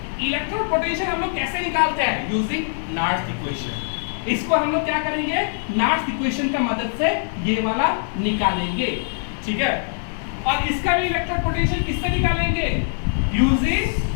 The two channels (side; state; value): right; silent; digital silence